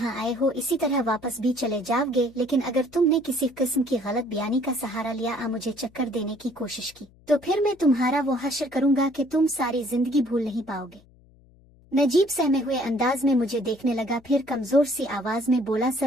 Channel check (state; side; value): noise; left; hum, 28 dB below the sound